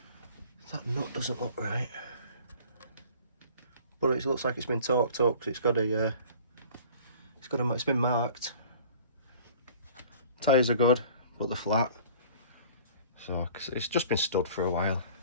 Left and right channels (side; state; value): both; inverted; correlation -0.48